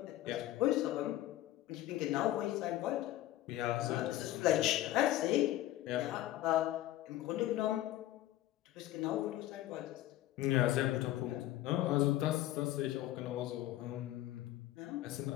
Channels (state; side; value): quieter; right; 14.7 dB